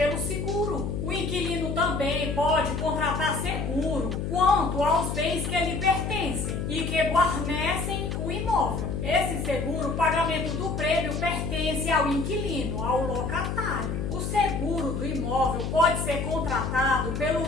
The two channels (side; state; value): left; noise; hum, 3 dB below the sound